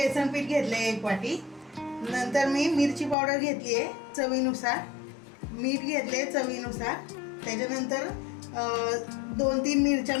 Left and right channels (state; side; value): drops out; right; at 3.2 s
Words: पीठ घेतले आहे 1 वाटी। नंतर मी मिरची पावडर घेतली आहे चवीनुसार, मीठ घेतले चवीनुसार। त्याच्यानंतर 2-3 मिरच्या